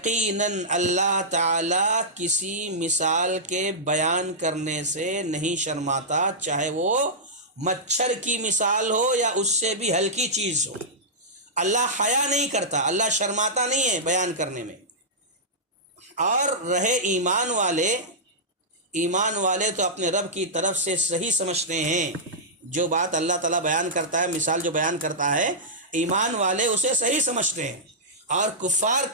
اللہ تعالیٰ کسی مثال کے بیان کرنے سے نہیں شرماتا، چاہے وہ مچھر کی مثال ہو یا اس سے بھی ہلکی چیز ہو۔ اللہ حیا نہیں کرتا، اللہ شرماتا نہیں ہے بیان کرنے میں۔ اور رہے ایمان والے تو اپنے رب کی طرف سے صحیح سمجھتے ہیں، جو بات اللہ تعالیٰ بیان کرتا ہے، مثال جو بیان کرتا ہے، ایمان والے اسے صحیح سمجھتے ہیں، اور کفار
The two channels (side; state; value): both; normal; correlation -0.11